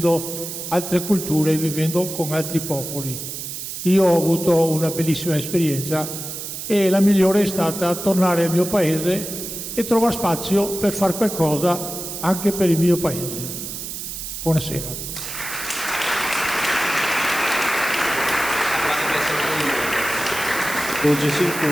altre culture e vivendo con altri popoli. Io ho avuto una bellissima esperienza e la migliore è stata tornare al mio paese e trovare spazio per fare qualcosa anche per il mio paese. Buonasera. Giunge in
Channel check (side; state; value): right; noise; hiss, 7 dB below the sound